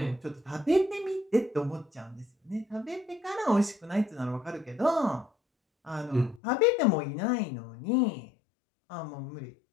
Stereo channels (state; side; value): drops out; right; at 6.4 s